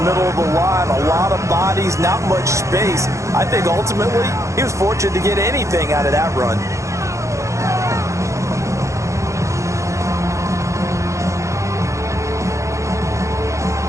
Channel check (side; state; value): left; late; 0.15 ms